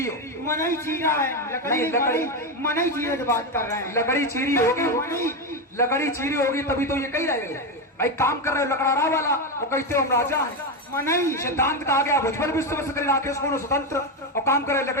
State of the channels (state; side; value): normal; both; correlation 0.11